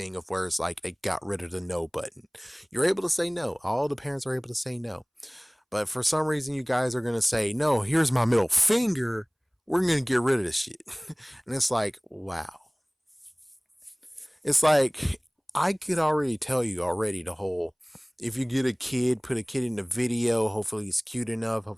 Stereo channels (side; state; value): both; identical; correlation 1.00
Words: of where it's like they got rid of the no button. You're able to say no. All the parents are able to say no. But for some reason, you guys are going to say, no, here's my middle finger. We're going to get rid of this shit. And it's like, wow. It's like I could already tell you already the whole if you get a kid, put a kid in the video, hopefully he's cute enough,